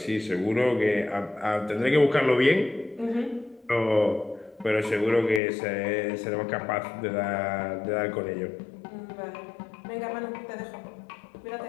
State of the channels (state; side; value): drops out; right; at 5.4 s